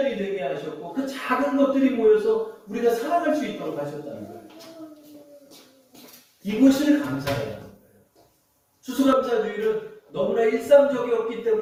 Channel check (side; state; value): both; identical; correlation 1.00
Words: 되게 하셨고 그 작은 것들이 모여서 우리가 살아갈 수 있도록 하셨다는 거예요. 이것을 감사해야 하는 거예요. 추수감사주의는 너무나 일상적이었기